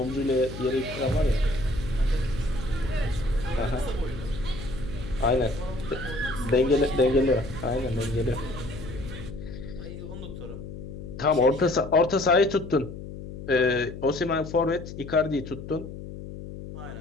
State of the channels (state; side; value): noise; left; hum, 11 dB below the sound